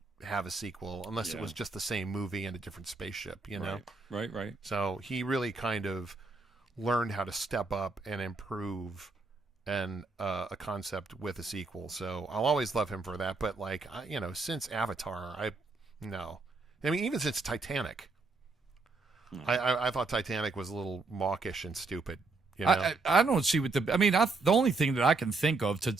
have a sequel unless it was just the same movie and a different spaceship, Right. So he really kind of learned how to step up and improve a concept with a sequel. So I'll always love him for that. But since Avatar, even since Titanic, I thought Titanic was a little mawkish and stupid. I don't see what the only thing that I can think of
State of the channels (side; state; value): left; quieter; 3.7 dB